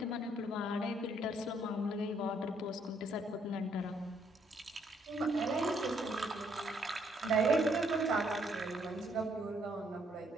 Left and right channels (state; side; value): normal; both; correlation 0.69